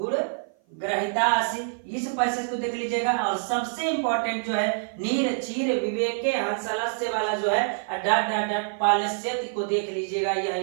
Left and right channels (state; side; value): silent; left; 55 dB below the other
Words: ग्रहितासी, इस पैसेज को देख लीजिएगा। और सबसे इंपॉर्टेंट जो है नीर चीर विवेके हंसलस्य वाला जो है डॉट डॉट डॉट पालस्यति को देख लीजिएगा, यह